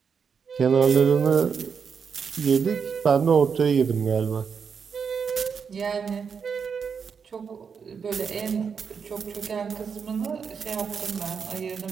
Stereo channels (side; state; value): left; quieter; 6.3 dB